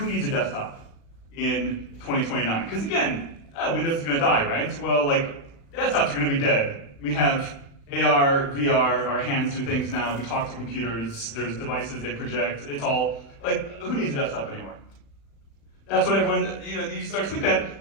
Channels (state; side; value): late; right; 36 ms